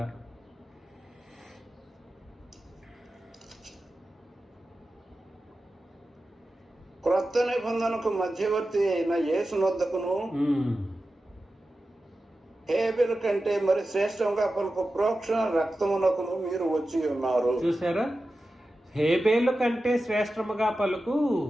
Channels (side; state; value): both; normal; correlation 0.93